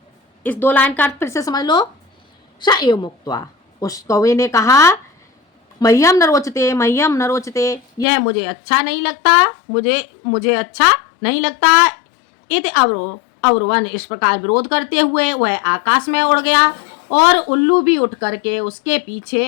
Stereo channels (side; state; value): right; drops out; at 8.1 s